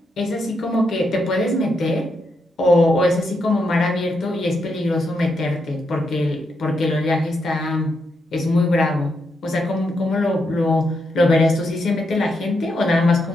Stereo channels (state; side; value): normal; both; correlation 0.82